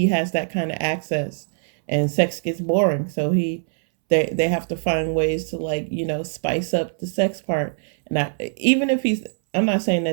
has that kind of access and sex gets boring. So they have to find ways to, like, you know, spice up the sex part. And even if I'm not saying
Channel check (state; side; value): silent; left; 64 dB below the other